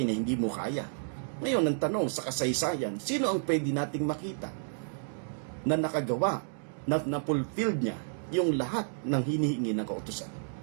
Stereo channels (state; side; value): silent; left; digital silence